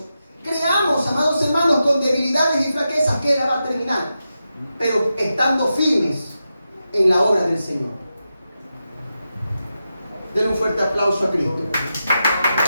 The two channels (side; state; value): both; inverted; correlation -0.89